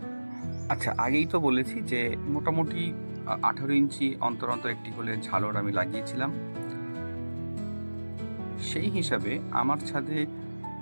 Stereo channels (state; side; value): inverted; both; correlation -1.00